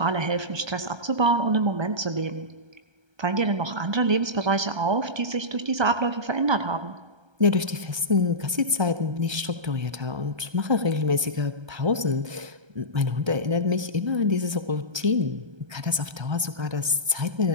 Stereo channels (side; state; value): left; late; 1.3 ms